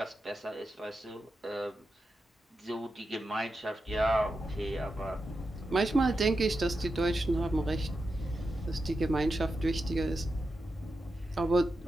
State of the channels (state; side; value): normal; both; correlation 0.89